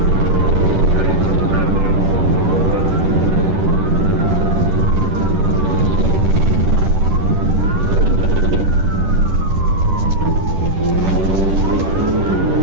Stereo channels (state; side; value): late; left; 10 ms